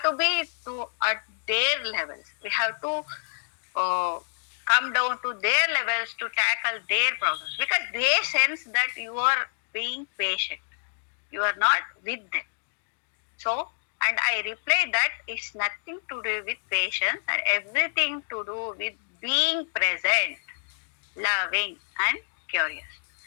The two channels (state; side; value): silent; right; digital silence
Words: to be at their levels. We have to come down to their levels to tackle their problems, because they sense that you are being patient. You are not with them. So, and I reply that it's nothing to do with patience and everything to do with being present, loving, and curious.